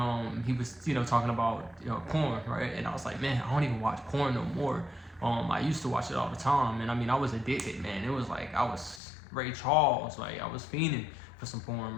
he was, talking about porn, right? And I was like, man, I don't even watch porn no more. I used to watch it all the time, and I mean, I was addicted, man. It was like I was Ray Charles, like I was fiending for some porn,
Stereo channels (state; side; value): drops out; right; at 9.0 s